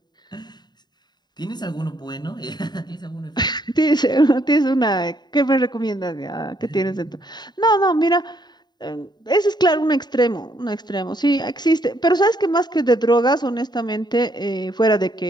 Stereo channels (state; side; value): late; right; 0.21 ms